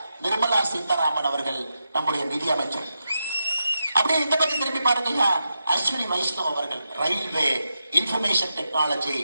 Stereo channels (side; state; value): both; inverted; correlation -0.87